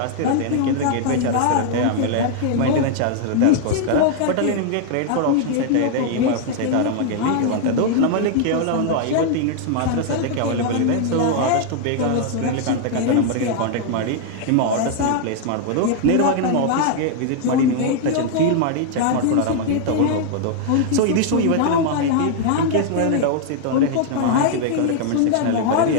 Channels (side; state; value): both; different; correlation 0.00